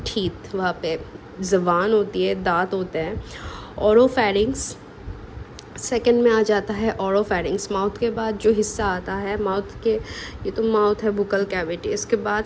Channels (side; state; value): both; identical; correlation 1.00